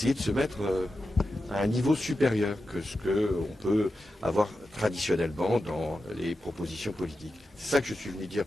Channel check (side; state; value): both; normal; correlation 0.91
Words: de se mettre à un niveau supérieur que ce qu'on peut avoir traditionnellement dans les propositions politiques. C'est ça que je suis venu dire